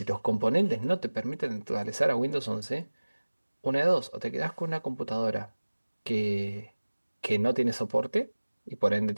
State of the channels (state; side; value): inverted; both; correlation -1.00